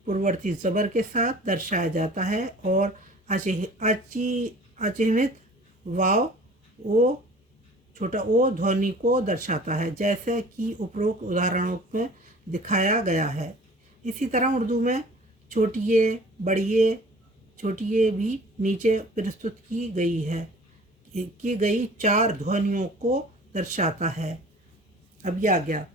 पूर्ववर्ती ज़बर के साथ दर्शाया जाता है, और अचिह्नित वाव ओ, छोटा ओ ध्वनि को दर्शाता है, जैसे कि उपरोक्त उदाहरणों में दिखाया गया है। इसी तरह उर्दू में छोटी ए, बड़ी ए, छोटी ए भी नीचे प्रस्तुत की गई है, की गई चार ध्वनियों को दर्शाता है। अब ये आ गया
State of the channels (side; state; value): both; normal; correlation 0.46